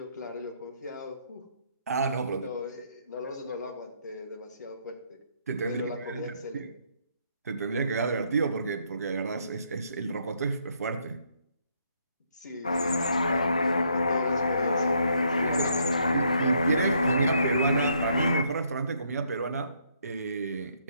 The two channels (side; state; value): both; inverted; correlation -0.71